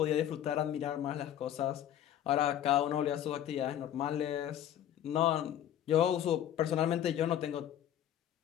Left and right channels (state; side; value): quieter; right; 11.0 dB